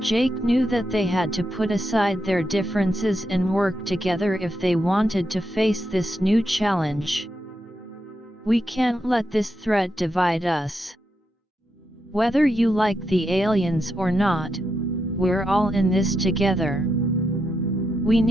knew that they had to put aside their differences and work together if they wanted to face this new challenge. We can't let this threat divide us. Whether you like the aliens or not, we're all in this together. We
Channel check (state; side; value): normal; both; correlation 0.84